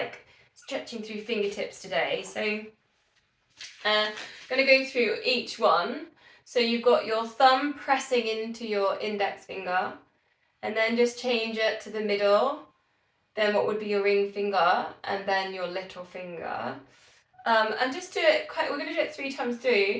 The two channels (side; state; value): both; identical; correlation 1.00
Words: stretching through fingertips today. So going to go through each one. So you've got your thumb pressing into your index finger, and then just change it to the middle. Then what would be your ring finger, and then your little finger. And just do it we're going to do it 3 times